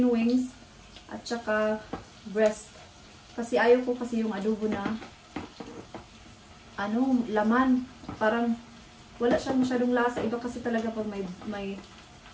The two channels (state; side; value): identical; both; correlation 1.00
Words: wings at saka breast. Kasi ayaw ko kasi yung adobo na laman. Parang wala siyang masyadong lasa. Iba kasi talaga pag